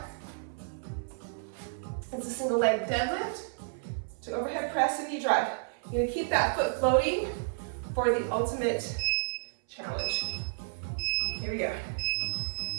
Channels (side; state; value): left; silent; 57 dB below the other